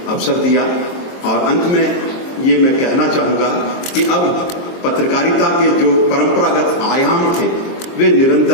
अवसर दिया। और अंत में ये मैं कहना चाहूंगा कि अब पत्रकारिता के जो परंपरागत आयाम थे वे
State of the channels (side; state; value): right; late; 22 ms